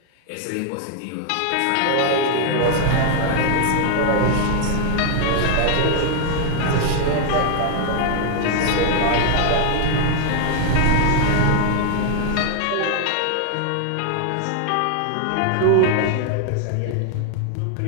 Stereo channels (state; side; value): different; both; correlation 0.00